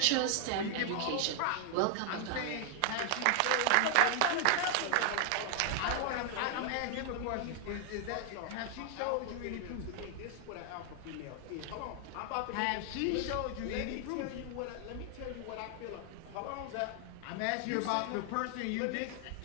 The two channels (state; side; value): different; both; correlation 0.00